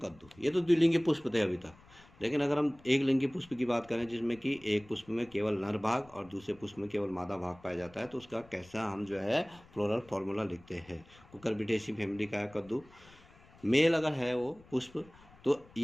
ये तो द्विलिंगी पुष्प थे अभी तक, लेकिन अगर हम एक लिंगी पुष्प की बात करें जिसमें कि एक पुष्प में केवल नर भाग और दूसरे पुष्प में केवल मादा भाग पाया जाता है, तो उसका कैसा हम जो है फ्लोरल फॉर्मूला लिखते हैं। कुकुरबिटेसी फैमिली का है कद्दू। मेल अगर है वो पुष्प तो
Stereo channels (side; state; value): left; noise; rumble, 25 dB below the sound